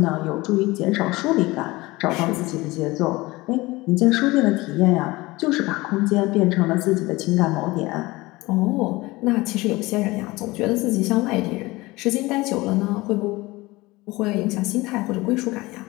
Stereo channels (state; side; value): quieter; right; 21.1 dB